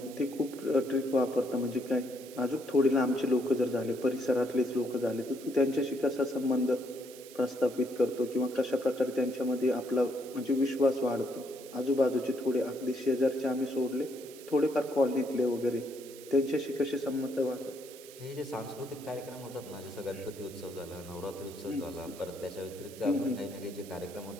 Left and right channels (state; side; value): noise; right; hiss, 18 dB below the sound